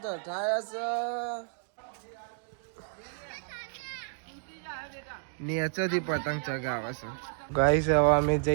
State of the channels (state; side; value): silent; left; digital silence